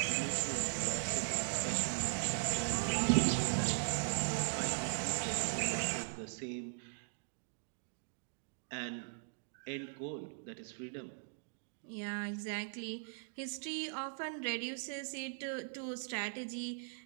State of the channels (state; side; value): silent; left; digital silence